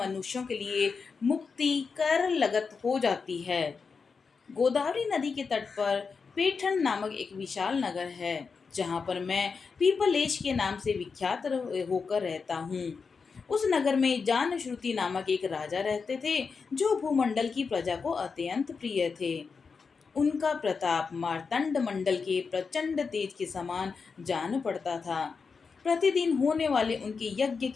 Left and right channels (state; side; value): quieter; right; 5.2 dB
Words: के लिए मुक्ति कर लगत हो जाती है। गोदावरी नदी के तट पर पेठन नामक एक विशाल नगर है, जहाँ पर मैं पीपलेश के नाम से विख्यात होकर रहता हूँ। उस नगर में जानश्रुति नामक एक राजा रहते थे, जो भूमंडल की प्रजा को अत्यंत प्रिय थे। उनका प्रताप मार्तंड मंडल के प्रचंड तेज के समान जान पड़ता था। प्रतिदिन होने वाले उनके यज्ञ